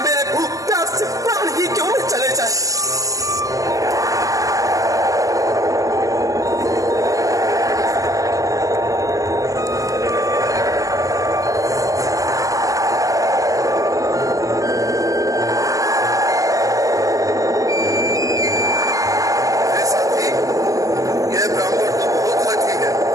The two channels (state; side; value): late; left; 0.17 ms